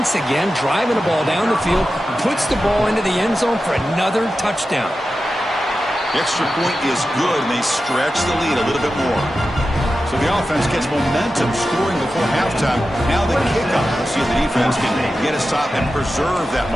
again, driving the ball down the field, puts the ball into the end zone for another touchdown. The extra point is good, and they stretch the lead a little bit more. So the offense gets momentum scoring before halftime. Now the kickoff. Let's see if the defense can get a stop and preserve that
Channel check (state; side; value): normal; both; correlation 0.92